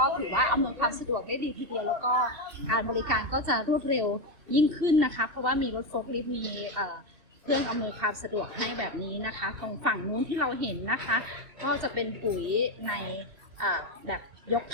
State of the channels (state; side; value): late; left; 2.7 ms